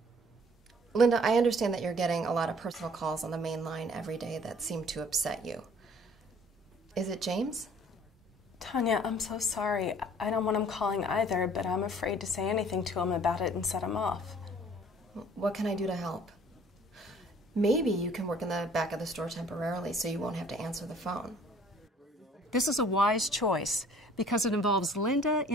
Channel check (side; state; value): both; normal; correlation 0.55